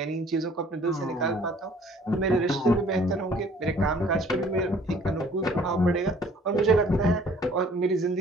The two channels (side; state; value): both; normal; correlation 0.55